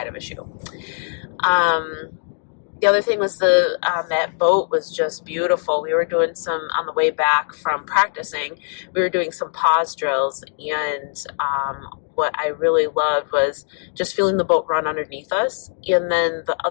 of a shoe. The other thing was that boat was just beautiful. We were doing on the way back from practicing, we were doing some pause drills, and what I really loved was just feeling the boat run underneath us. And then the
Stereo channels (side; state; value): right; silent; digital silence